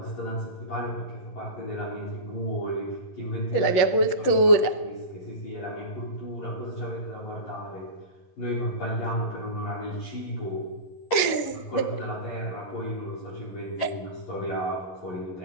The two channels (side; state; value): right; late; 11 ms